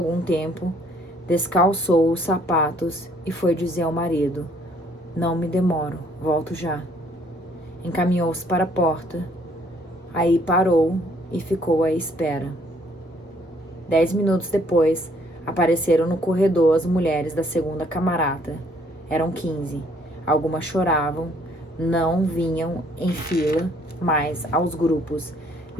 tempo, descalçou os sapatos e foi dizer ao marido: não me demoro, volto já. Encaminhou-se para a porta. Aí parou e ficou à espera. 10 minutos depois, apareceram no corredor as mulheres da segunda camarata. Eram 15. Algumas choravam, não vinham em fila, mas aos grupos,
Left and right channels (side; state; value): both; normal; correlation 0.63